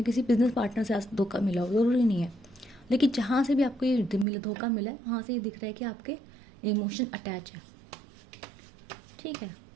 किसी बिजनेस पार्टनर से धोखा मिला हो, ज़रूरी नहीं है। लेकिन जहाँ से भी आपको ये धोखा मिला है, वहाँ से ये दिख रहा है कि आपके इमोशन अटैच है। ठीक है,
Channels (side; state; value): left; drops out; at 4.2 s